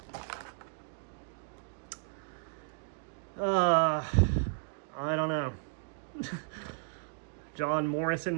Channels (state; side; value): silent; left; digital silence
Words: I don't know. John